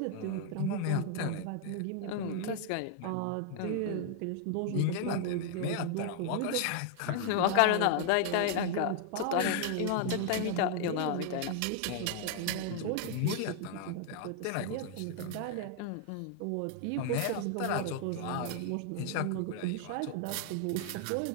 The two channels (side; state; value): both; different; correlation 0.00